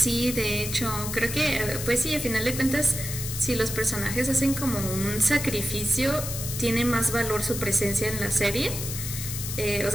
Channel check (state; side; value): noise; left; hiss, 6 dB below the sound